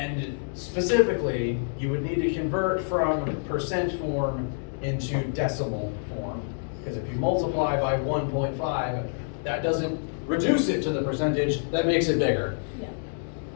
specifically, you would need to convert from percent form into decimal form, because if you multiply by 1.5, that doesn't reduce it to the percentage, that makes it bigger. Yeah.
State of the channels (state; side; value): silent; right; digital silence